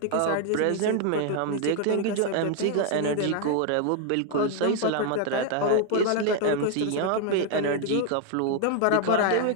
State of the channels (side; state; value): both; different; correlation 0.01